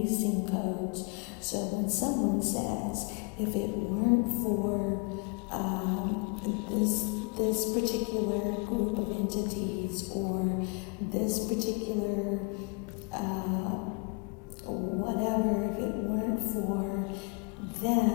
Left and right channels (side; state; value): right; quieter; 33.9 dB